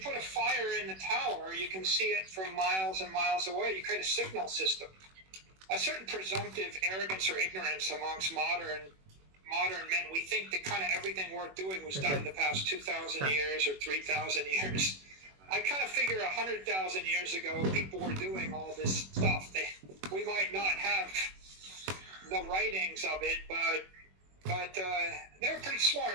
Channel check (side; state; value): left; late; 21 ms